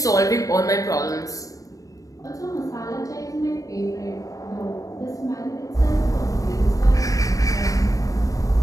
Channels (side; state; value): right; late; 0.16 ms